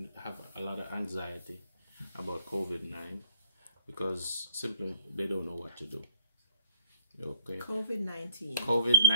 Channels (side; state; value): both; inverted; correlation -0.58